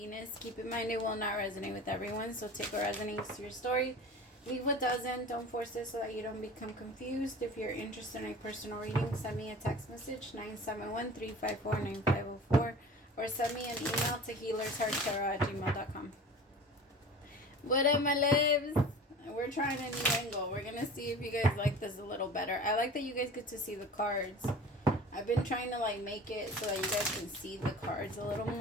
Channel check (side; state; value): both; normal; correlation 0.38